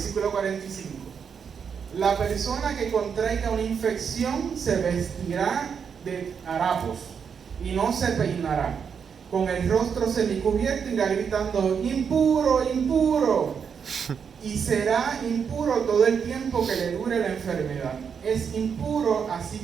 45. La persona que contraiga una infección se vestirá de harapos y no se peinará. Con el rostro semicubierto irá gritando: impuro, impuro. Y será impuro todo el tiempo que le dure la enfermedad. Es impuro, así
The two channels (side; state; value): left; quieter; 6.8 dB